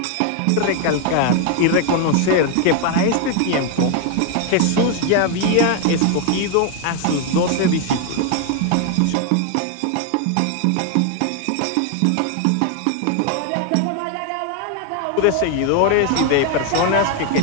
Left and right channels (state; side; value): different; both; correlation 0.00